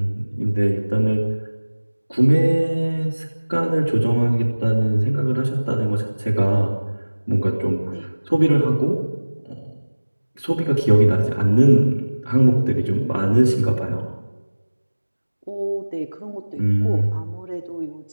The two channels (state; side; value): inverted; both; correlation -1.00